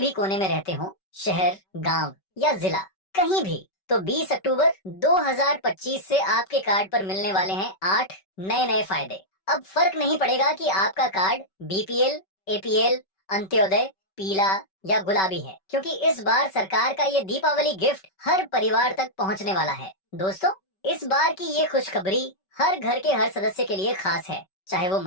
कोने में रहते हो, शहर, गांव या जिला, कहीं भी, तो 20 अक्टूबर 2025 से आपके कार्ड पर मिलने वाले हैं 8 नए नए फायदे। अब फर्क नहीं पड़ेगा कि आपका कार्ड बीपीएल, एपीएल, अंत्योदय, पीला या गुलाबी है, क्योंकि इस बार सरकार का ये दीपावली गिफ्ट हर परिवार तक पहुंचने वाला है। दोस्तों, इस बार की ये खुशखबरी हर घर के हर सदस्य के लिए खास है, चाहे वो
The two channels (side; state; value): right; late; 5.2 ms